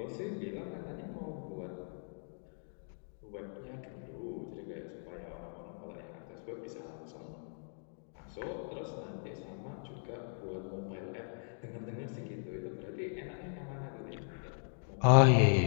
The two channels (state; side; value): silent; right; digital silence